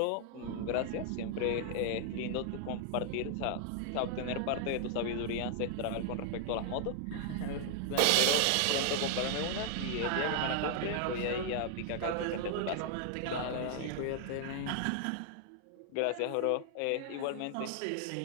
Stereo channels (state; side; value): different; both; correlation 0.00